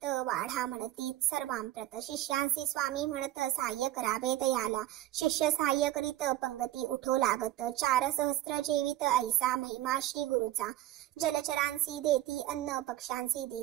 वाढा म्हणती सर्वांप्रत, शिष्यांसी स्वामी म्हणत सहाय्य करावे तयाला। शिष्य सहाय्य करीत पंगती उठो लागत, 4 सहस्त्र जेवित ऐसा महिमा श्री गुरुचा। जलचरांसी देती अन्न पक्ष्यांसी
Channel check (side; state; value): left; quieter; 14.5 dB